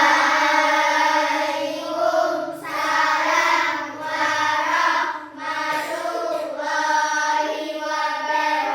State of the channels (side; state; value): both; identical; correlation 1.00